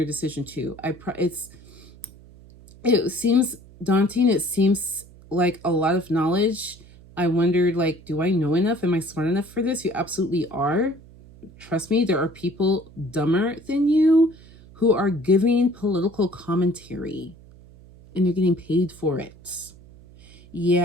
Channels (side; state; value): right; noise; hum, 22 dB below the sound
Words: decision too. It seems daunting. It seems like a lot of knowledge. I wondered, do I know enough? Am I smart enough for this? You absolutely are. trust me, there are people dumber than you who are giving political commentary and you're getting paid for it.